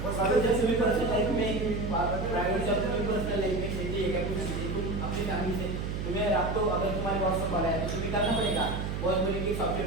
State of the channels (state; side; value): noise; right; hum, 3 dB below the sound